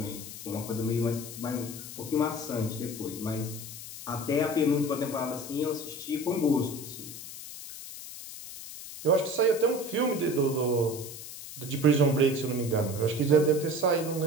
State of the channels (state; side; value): noise; left; hiss, 12 dB below the sound